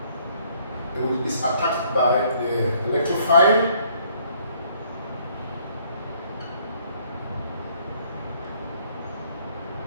It is attacked by the electrophile.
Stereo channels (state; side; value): inverted; both; correlation -0.64